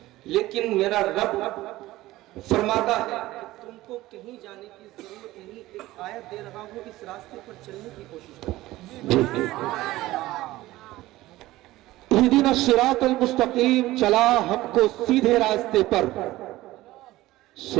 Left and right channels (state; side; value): quieter; left; 17.2 dB